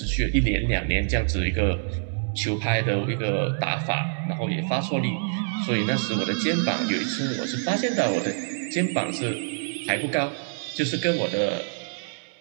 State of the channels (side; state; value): left; silent; digital silence